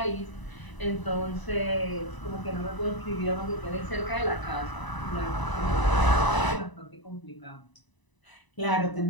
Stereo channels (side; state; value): right; late; 1.0 ms